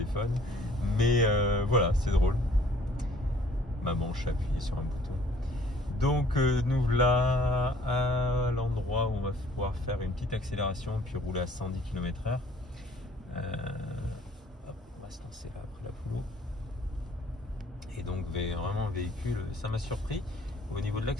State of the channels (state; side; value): normal; both; correlation 0.57